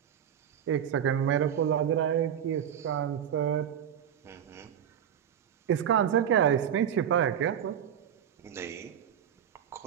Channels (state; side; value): quieter; left; 9.3 dB